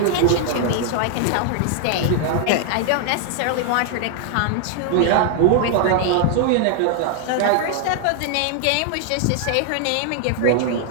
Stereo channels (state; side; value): different; both; correlation 0.00